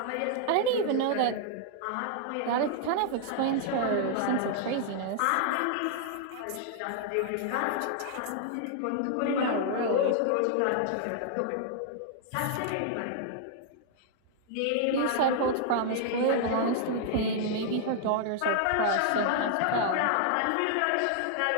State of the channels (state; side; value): different; both; correlation -0.01